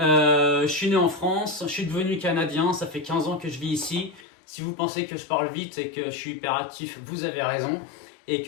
suis né en France, je suis devenu canadien, ça fait 15 ans que je vis ici. Si vous pensez que je parle vite et que je suis hyperactif, vous avez raison. Et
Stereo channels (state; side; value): drops out; right; at 4.2 s